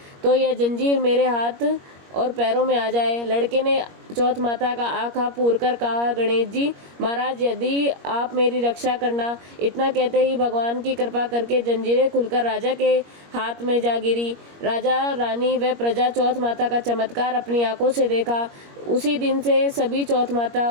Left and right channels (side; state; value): left; late; 21 ms